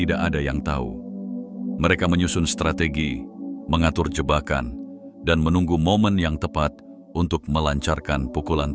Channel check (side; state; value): both; identical; correlation 1.00